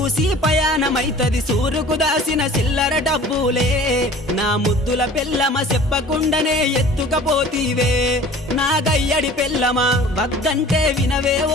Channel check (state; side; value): normal; both; correlation 0.46